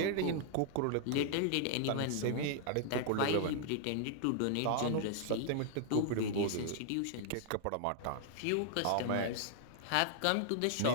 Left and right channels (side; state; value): both; different; correlation 0.00